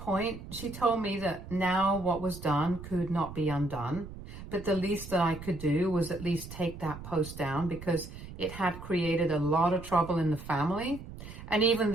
she told me that now what was done could not be undone, but the least that I could do was at least take that post down because it had created a lot of trouble in the family, and even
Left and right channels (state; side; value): noise; right; rumble, 13 dB below the sound